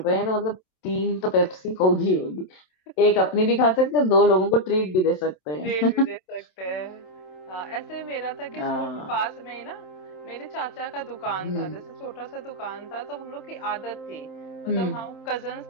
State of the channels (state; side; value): late; right; 27 ms